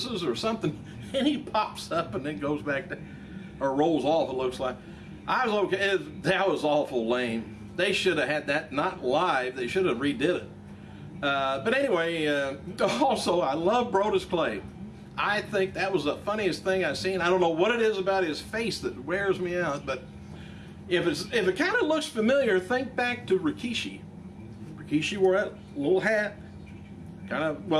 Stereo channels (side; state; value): both; identical; correlation 1.00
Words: or something, and he pops up and then goes back to, or rolls off, it looks like. I was okay. That was awful lame. They should have had that not live. They should have redid it. But anyway, also, I love Brodus Clay. I think that was the funniest thing I've seen. I don't know what it is about his face that wears me out, but if it kind of looks familiar, think back to Rikishi. Rikishi wore that little hat, kind of,